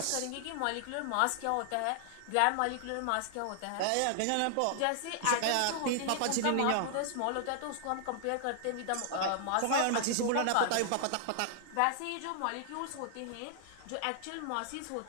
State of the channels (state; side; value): different; both; correlation -0.01